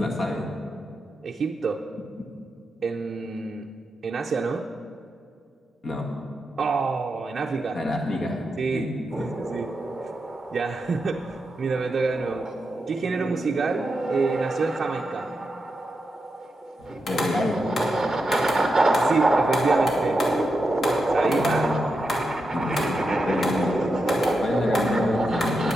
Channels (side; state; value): both; normal; correlation 0.87